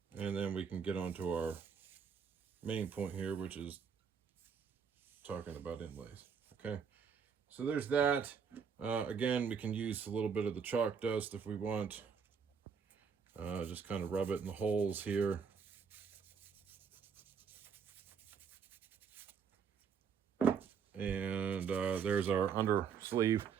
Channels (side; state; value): left; quieter; 6.6 dB